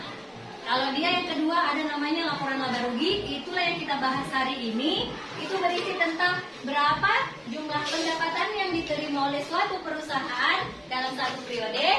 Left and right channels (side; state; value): both; identical; correlation 1.00